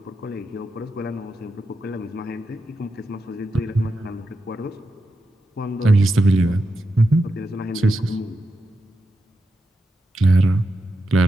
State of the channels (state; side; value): normal; both; correlation 0.87